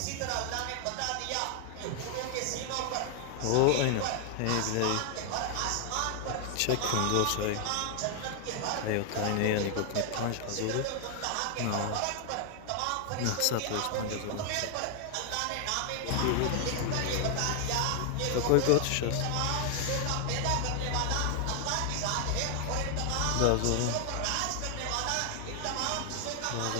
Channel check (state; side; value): different; both; correlation 0.00